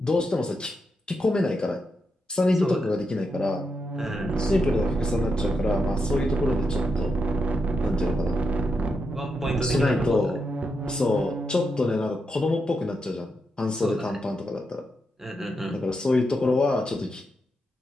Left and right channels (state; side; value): normal; both; correlation 0.84